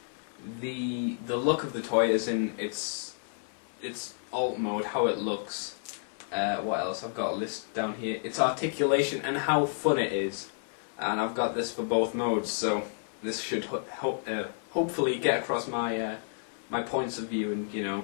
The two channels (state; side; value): silent; right; 57 dB below the other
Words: the look of the toy, as in its alt mode, how it looks. What else? I've got a list down here. Its articulation and how fun it is. And I've got this for both modes, so this should hopefully get across my my points of view and, you